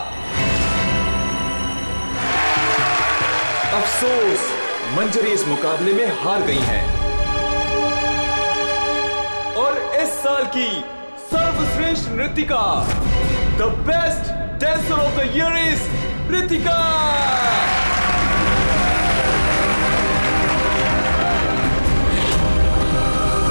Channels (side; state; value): both; inverted; correlation -1.00